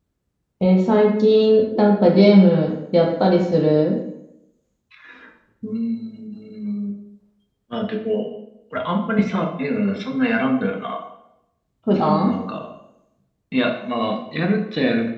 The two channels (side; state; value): both; identical; correlation 1.00